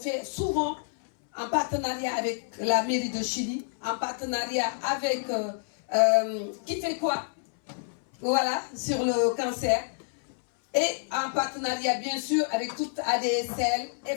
souvent en partenariat avec la mairie de Chili, en partenariat avec qui fait quoi, voilà, sur le cancer, et en partenariat bien sûr avec toute ADSL,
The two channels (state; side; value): silent; right; 59 dB below the other